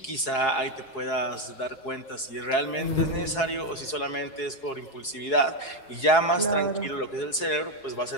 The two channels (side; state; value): right; late; 4.7 ms